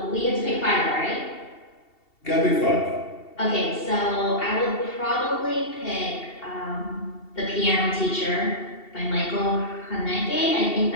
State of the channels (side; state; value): right; late; 2.7 ms